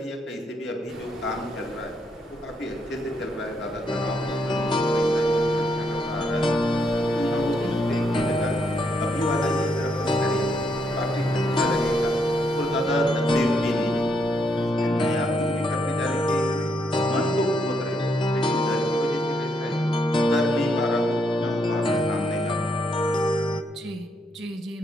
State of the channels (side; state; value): both; normal; correlation 0.76